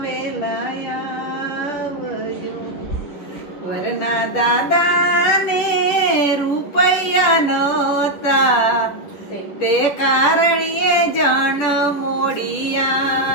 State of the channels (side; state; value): right; late; 10 ms